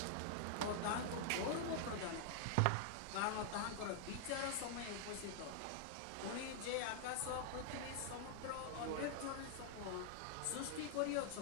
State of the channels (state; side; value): different; both; correlation -0.01